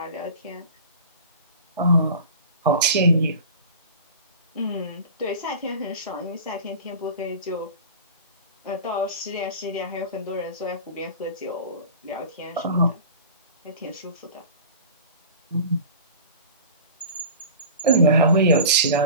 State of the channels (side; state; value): both; inverted; correlation -0.37